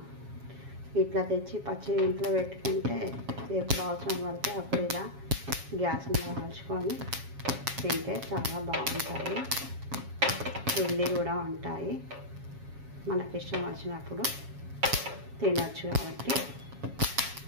ఇట్లా తెచ్చి పచ్చి ఇంట్లో పెట్టుకుంటే ఎప్పుడు అవసరం పడితే అప్పుడు ఇలా గ్యాస్ మీద కాల్చుకొని తింటే చాలా బాగుంటాయి, హెల్దీ కూడా ఉంటాయి. మనకి ఇష్టం వచ్చినప్పుడు తినచ్చు. కాబట్టి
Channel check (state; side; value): late; left; 7.3 ms